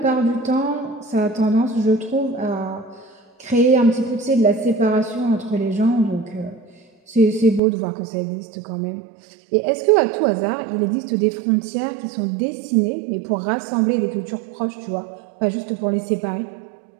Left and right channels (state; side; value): drops out; left; at 7.6 s